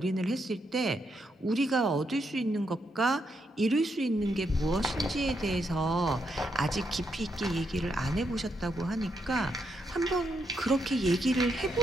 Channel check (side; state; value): both; normal; correlation 0.80